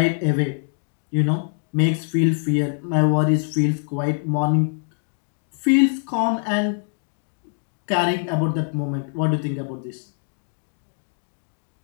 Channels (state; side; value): silent; right; 60 dB below the other